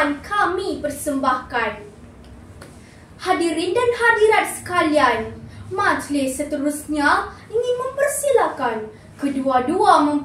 kami persembahkan. Hadirin dan hadirat sekalian, majlis seterusnya ingin mempersilakan kedua-dua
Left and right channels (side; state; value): both; identical; correlation 1.00